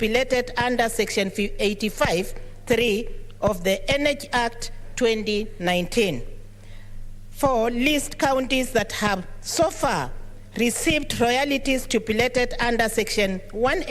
under Section 85(3) of the Energy Act 2019. 4, list counties that have so far received royalties stipulated under Section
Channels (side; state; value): both; identical; correlation 1.00